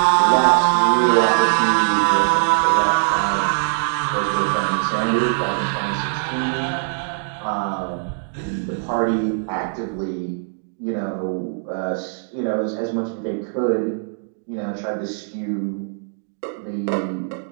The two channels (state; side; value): silent; left; digital silence